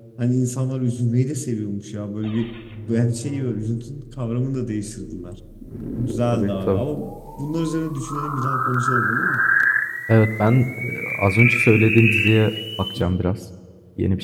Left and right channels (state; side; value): identical; both; correlation 1.00